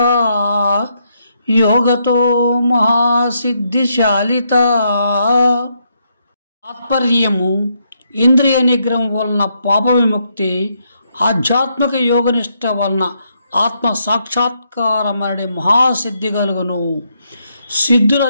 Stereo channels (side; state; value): both; inverted; correlation -0.77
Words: యోగతో మహాసిద్ధిశాలిత. తాత్పర్యము: ఇంద్రియ నిగ్రహం వలన పాప విముక్తి, ఆధ్యాత్మిక యోగనిష్ట వలన ఆత్మ సాక్షాత్కారమనే మహాసిద్ధి కలుగును.